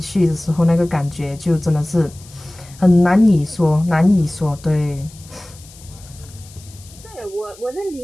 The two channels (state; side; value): noise; left; hiss, 22 dB below the sound